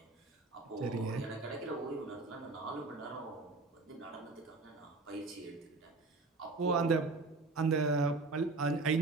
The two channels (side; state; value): left; quieter; 3.6 dB